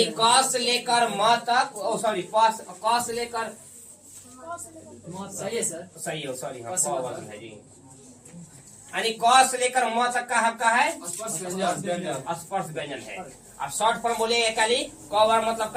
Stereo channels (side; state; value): both; identical; correlation 1.00